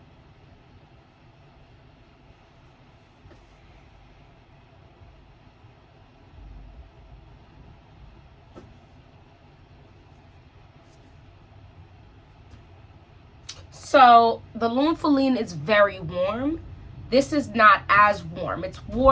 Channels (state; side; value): identical; both; correlation 1.00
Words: So the Lune Feline is very warm. This is not as warm. It's